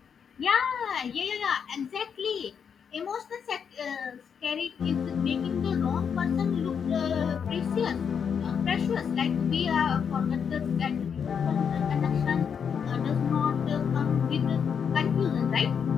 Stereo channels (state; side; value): quieter; right; 7.1 dB